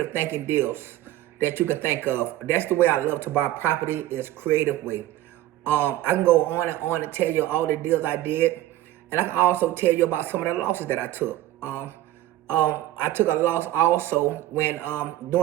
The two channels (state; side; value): quieter; left; 14.6 dB